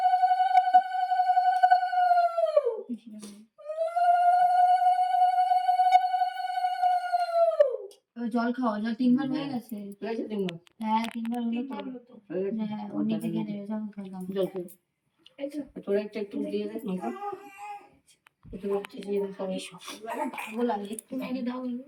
জল খাওয়া, জল 3বার হয়ে গেছে। হ্যাঁ 3বার হলো তো। হ্যাঁ ও নিচে খেয়ে নেবে, জল খেলাম। জল খেয়ে তোরা একটু দিয়ে দেখ না। একটু দিয়ে দেখ, সকালবেলা ভালো লাগে একটু মেরে দাও।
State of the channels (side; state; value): both; identical; correlation 1.00